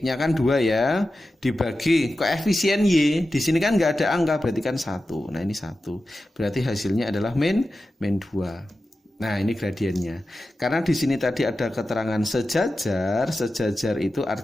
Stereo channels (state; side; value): normal; both; correlation 0.93